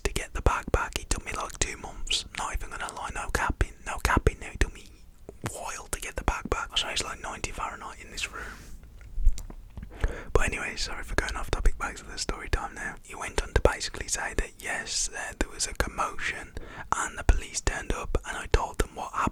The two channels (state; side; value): identical; both; correlation 1.00